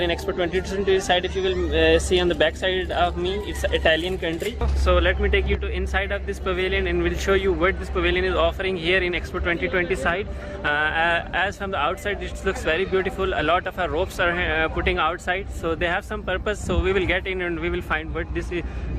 in Expo 2020 side. If you will see on the back side of me, it's Italian country. So let me take you to inside of this pavilion and will show you what this pavilion is offering here in Expo 2020 side. As from the outside it looks very beautiful. A lot of our ropes are putting outside, so they have some purpose. So we will get in and we will find what this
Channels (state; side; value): identical; both; correlation 1.00